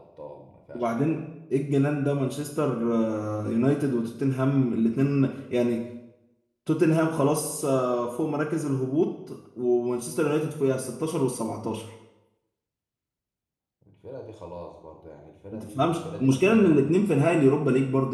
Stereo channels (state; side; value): identical; both; correlation 1.00